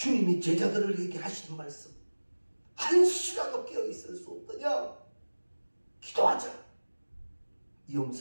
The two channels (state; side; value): inverted; both; correlation -1.00